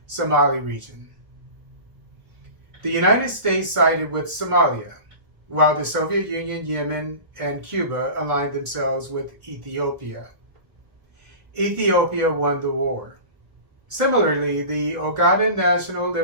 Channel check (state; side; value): late; left; 1.5 ms